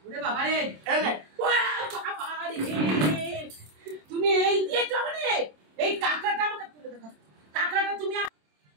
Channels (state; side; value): late; left; 27 ms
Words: ওরে বাবা রে, তুমি এই দিয়েছ মানে এই কাঁকড়াটা আমাকে তুলে দেখো। কাঁকড়াটা